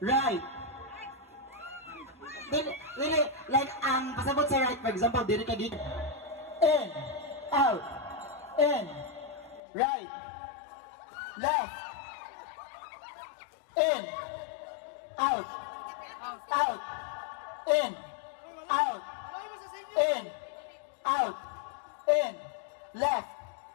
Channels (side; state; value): right; drops out; at 9.6 s